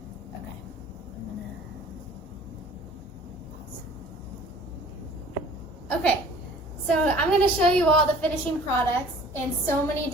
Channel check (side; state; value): both; normal; correlation 0.49